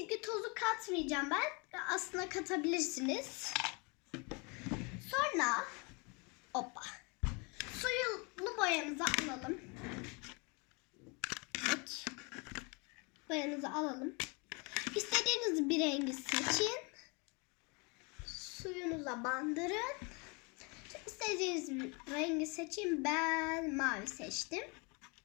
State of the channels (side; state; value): right; quieter; 30.9 dB